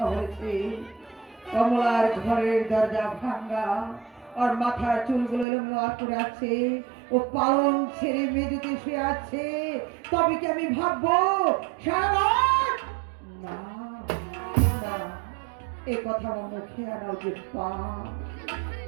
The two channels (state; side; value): drops out; left; at 5.5 s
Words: বলেছে। কমলার ঘরের দরজা ভাঙা, আর মাথার চুলগুলো এলোমেলো করে আছে, ও পালং ছেড়ে মেঝেতে শুয়ে আছে। তবে কি আমি ভাববো সারা রাত? না না, এ কথা আমার মুখে আনা উচিত পা।